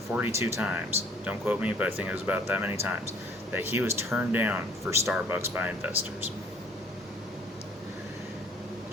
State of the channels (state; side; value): normal; both; correlation 0.56